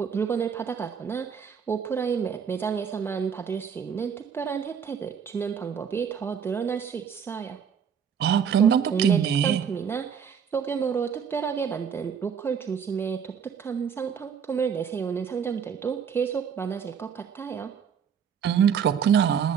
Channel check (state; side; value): quieter; left; 7.3 dB